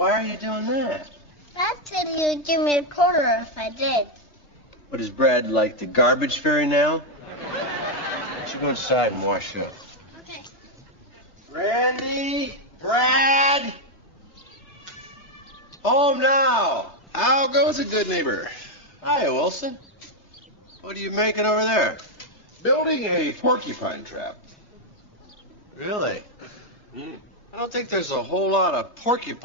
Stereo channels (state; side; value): late; right; 3.3 ms